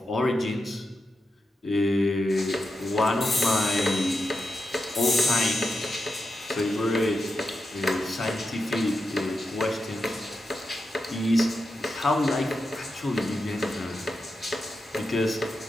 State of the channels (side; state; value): both; normal; correlation 0.88